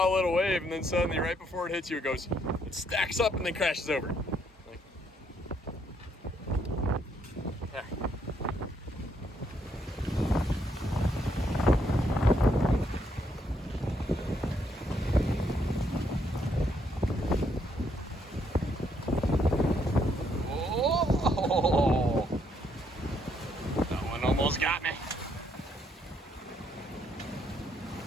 little wave, and then suddenly right before it hits you, it stacks up and then crashes over. Like, there. Oh, that one almost got me.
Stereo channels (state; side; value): normal; both; correlation 0.72